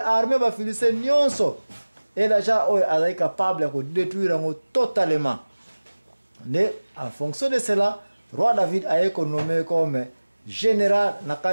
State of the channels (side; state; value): both; inverted; correlation -1.00